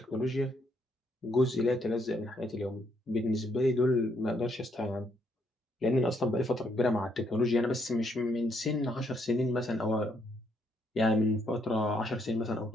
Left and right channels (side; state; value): both; normal; correlation 0.73